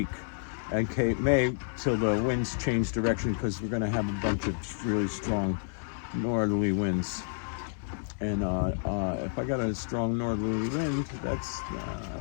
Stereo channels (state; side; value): silent; right; 58 dB below the other